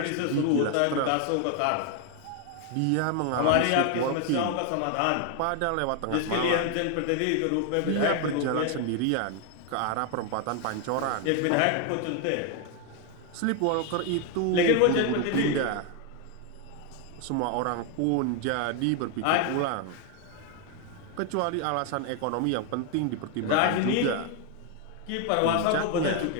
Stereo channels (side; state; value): both; different; correlation 0.01